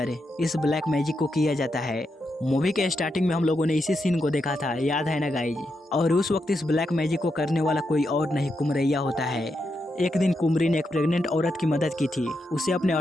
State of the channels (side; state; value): both; normal; correlation 0.84